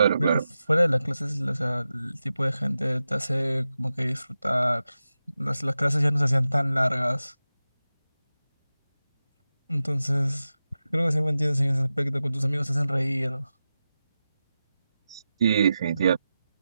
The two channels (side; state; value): both; inverted; correlation -0.92